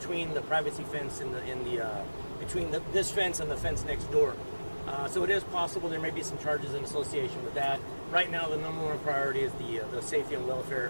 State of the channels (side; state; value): both; inverted; correlation -1.00